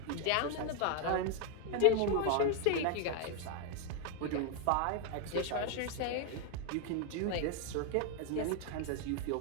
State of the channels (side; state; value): both; different; correlation 0.00